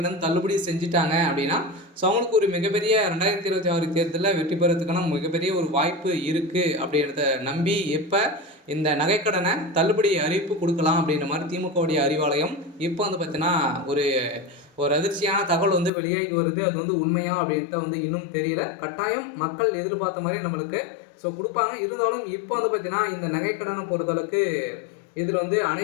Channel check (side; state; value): right; drops out; at 15.9 s